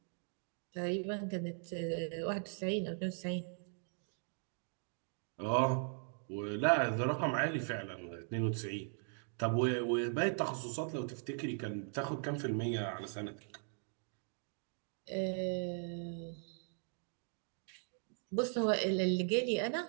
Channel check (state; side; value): silent; left; 52 dB below the other